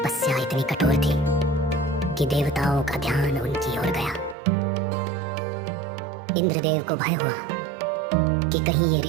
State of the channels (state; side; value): drops out; left; at 4.4 s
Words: इतनी कठोर थी कि देवताओं का ध्यान उनकी ओर गया। इंद्रदेव को भय हुआ कि कहीं ये